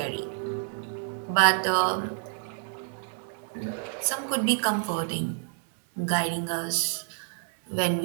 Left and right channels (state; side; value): silent; left; 58 dB below the other